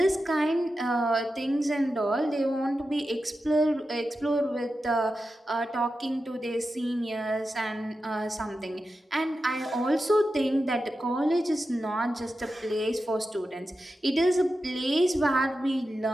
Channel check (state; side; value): normal; both; correlation 0.91